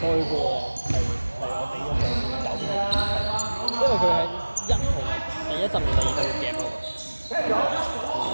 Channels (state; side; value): inverted; both; correlation -1.00